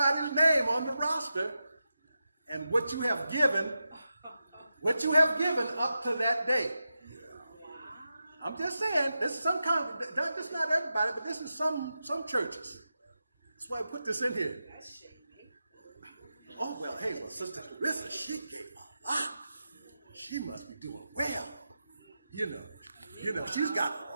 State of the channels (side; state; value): both; inverted; correlation -0.90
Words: name on the roster and what you have given up to that date. I'm just saying, this is some kind of, this not everybody, but this is some churches. That's why I put this in here. Oh, well, hey, well, Sister Clarissa, she gave a lot. She must be doing well. You know, she's got a